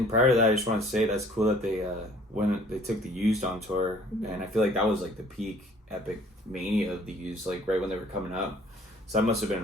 prior to that, I just want to say that's cool that they when they took the Used on tour, and I feel like that was like the peak epic mania of the Used, like right when they were coming up. So that must have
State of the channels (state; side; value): normal; both; correlation 0.55